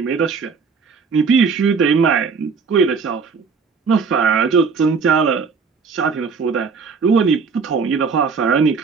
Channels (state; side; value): quieter; left; 5.3 dB